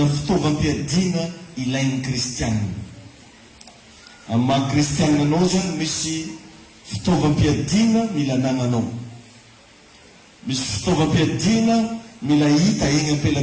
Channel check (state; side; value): identical; both; correlation 1.00